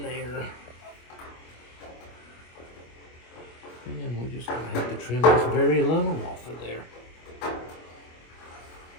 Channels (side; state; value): right; late; 25 ms